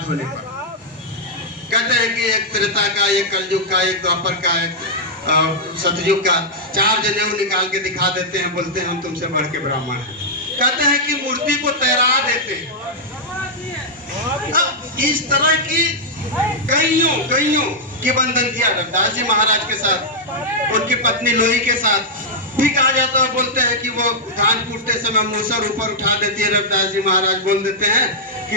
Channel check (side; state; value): both; normal; correlation -0.07